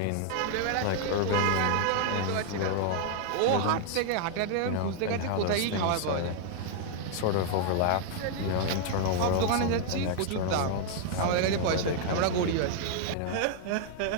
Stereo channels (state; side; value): different; both; correlation 0.00